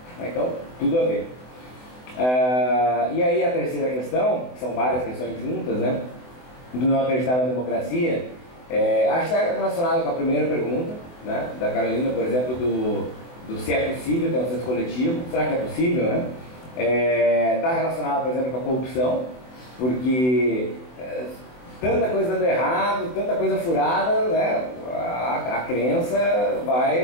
Então, tudo a ver. E aí a terceira questão, que são várias questões juntas, né, do não acreditar na democracia, acho que está relacionado com a primeira pergunta, né, da Carolina, por exemplo, do se é possível ter um senso coletivo. Será que é possível, né? Está relacionado, por exemplo, com a corrupção, porque tanta coisa dando errado, tanta coisa furada, né, a crença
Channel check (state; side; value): late; right; 24 ms